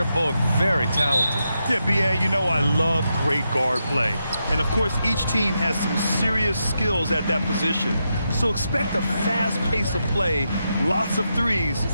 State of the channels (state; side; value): inverted; both; correlation -0.85